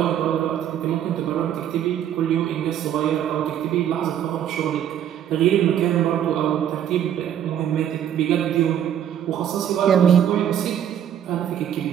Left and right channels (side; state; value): left; quieter; 10.0 dB